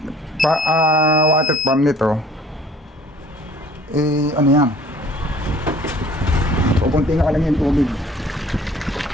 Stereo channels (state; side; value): normal; both; correlation 0.53